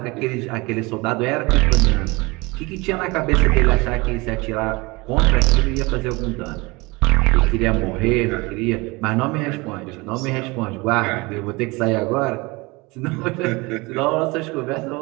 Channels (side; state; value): left; quieter; 24.6 dB